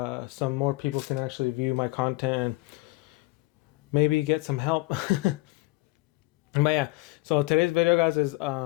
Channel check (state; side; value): quieter; right; 21.5 dB